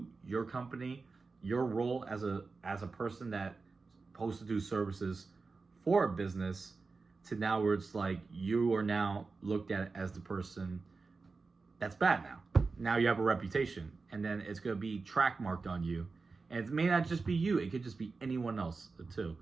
your company, your role as a person that's supposed to do services for a business, to now where it's like you are now looked at as the person that's bad now. Now you have a reputation, and then it's going to be track marked on you. And it may not just be you, it could just be anyone else too.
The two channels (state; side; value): quieter; left; 4.2 dB